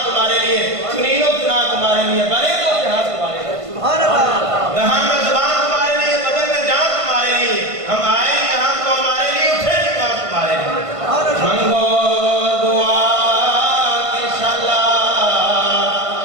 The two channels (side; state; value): left; late; 1.5 ms